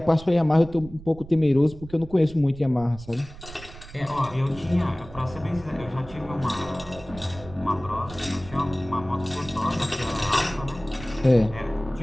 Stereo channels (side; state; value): right; noise; rumble, 16 dB below the sound